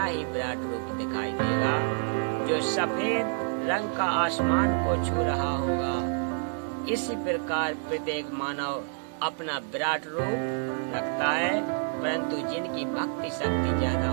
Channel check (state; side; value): silent; left; 59 dB below the other